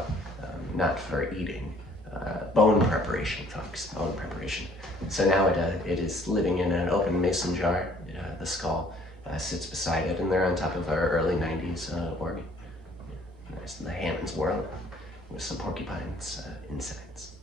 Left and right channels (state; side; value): normal; both; correlation 0.59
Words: Not for eating, bone preparation, folks, bone preparation. So now it is living in an open mason jar. The skull sits beside it, and they're on top of our early 90s organ. Nice in the Hammond's world, with some porcupines insides.